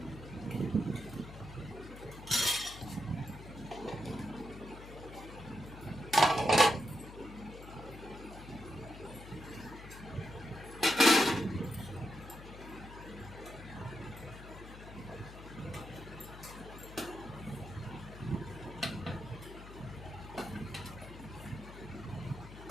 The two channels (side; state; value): left; noise; hum, 14 dB below the sound